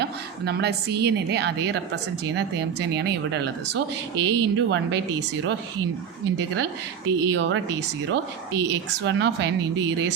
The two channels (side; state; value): left; quieter; 7.6 dB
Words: നമ്മളെ സി എന്നിലെ അതേ റെപ്രസെൻറ്റ് ചെയ്യുന്ന ടേംസ് തന്നെയാണ് ഇവിടെ ഉള്ളത്. So a into 1 by t0 integral t e over t0 t x1 of n into e